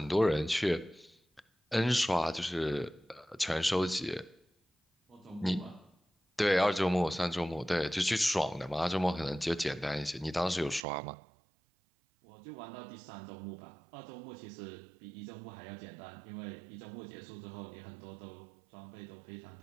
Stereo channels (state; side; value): drops out; left; at 10.9 s